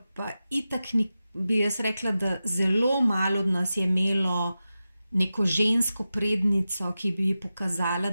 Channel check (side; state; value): both; inverted; correlation -0.93